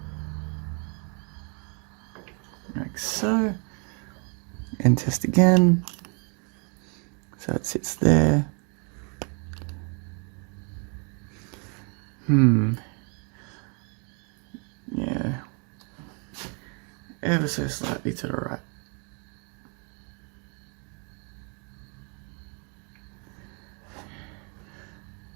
like so, and test again, so it sits there. Yeah, ever so slightly to the right.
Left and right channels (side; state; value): left; quieter; 36.1 dB